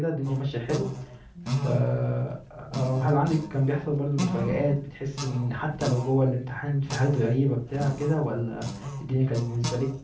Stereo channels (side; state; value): both; identical; correlation 1.00